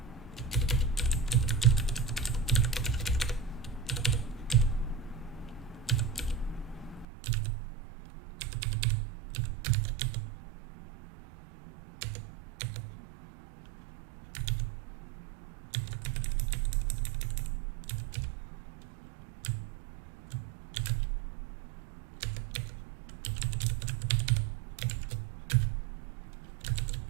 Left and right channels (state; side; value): drops out; left; at 7.1 s